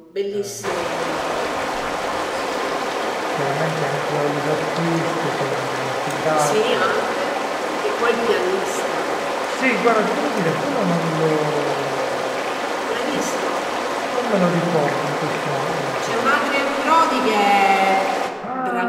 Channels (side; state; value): both; identical; correlation 1.00